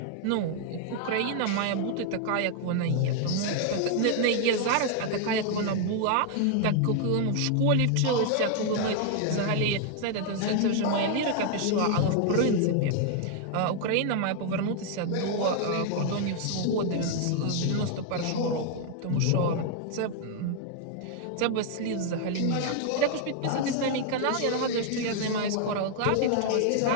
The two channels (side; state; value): both; different; correlation 0.00